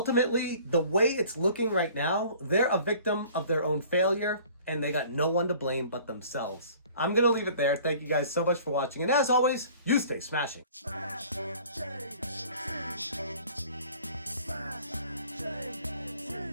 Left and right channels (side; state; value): both; inverted; correlation -0.50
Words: the way it's looking right now, they're a victim of their own failure, and they got no one to blame but themselves. I'm going to leave it there. Thank you guys so much for watching. And as always, you stay smashing. Smash,